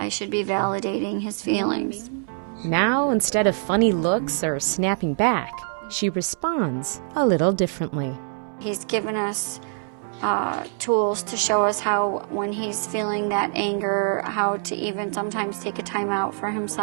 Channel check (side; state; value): left; silent; 62 dB below the other